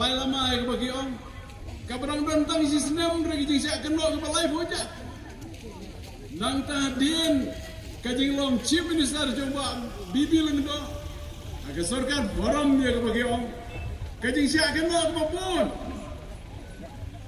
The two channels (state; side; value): identical; both; correlation 1.00